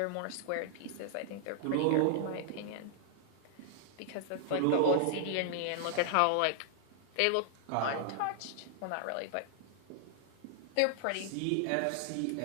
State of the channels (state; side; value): different; both; correlation 0.00